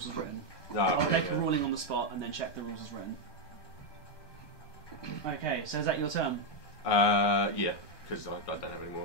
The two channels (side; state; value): right; late; 1.2 ms